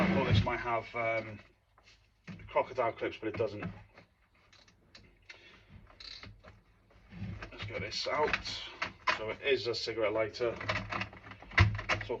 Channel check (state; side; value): identical; both; correlation 1.00